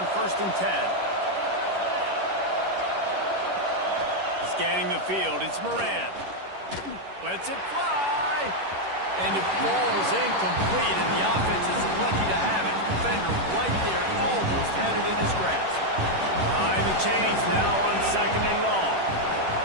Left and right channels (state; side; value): late; left; 11 ms